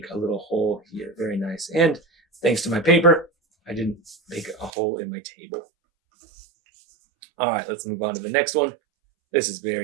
a little hole here. Very nice. And thanks to my paper, I didn't make a hole in my table. All right, let's move on to the next one. This is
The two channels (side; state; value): left; drops out; at 4.7 s